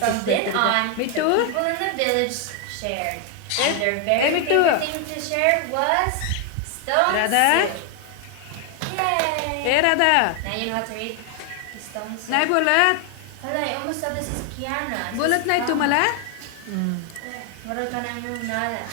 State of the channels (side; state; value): both; different; correlation 0.00